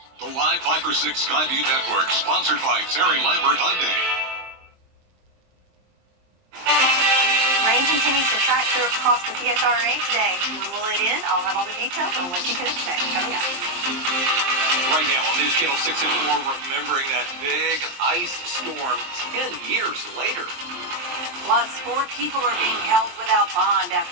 The Live 5 for 6 Skyview Network, sponsored by Terry Lambert Hyundai. Rain continues to track through across the PSRA today. When will it end? I'll have all the details on what you can expect coming up. Right now on News Channel 6 and 4, remembering that big ice storm 10 years later. Plus, 4 people are being held without bond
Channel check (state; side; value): late; left; 23 ms